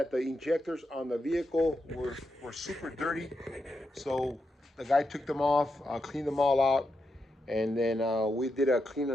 the injectors on the vehicle were super dirty. So the guy took them off, cleaned them all out. And then we did a clean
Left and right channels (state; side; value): normal; both; correlation 0.85